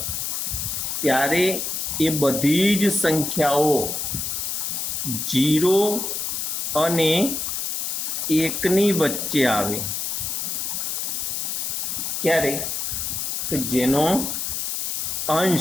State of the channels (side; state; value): left; noise; hiss, 2 dB below the sound